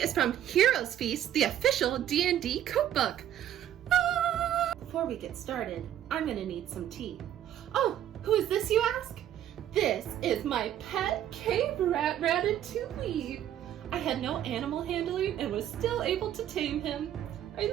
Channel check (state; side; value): quieter; left; 11.1 dB